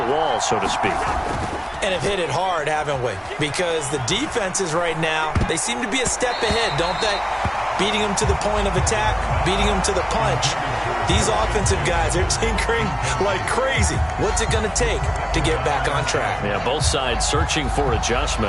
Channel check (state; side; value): identical; both; correlation 1.00